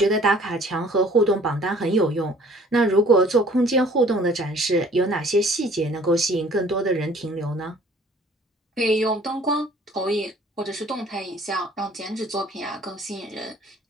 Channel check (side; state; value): both; normal; correlation 0.54